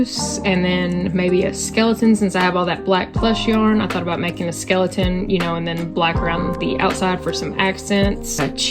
and then maybe a skeleton. Since I have all that black plush yarn, I thought about making a skeleton, you know, and then black around the outside for some accents.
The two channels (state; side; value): identical; both; correlation 1.00